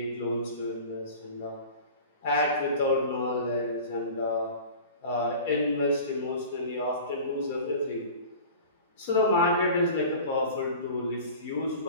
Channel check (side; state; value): both; inverted; correlation -0.39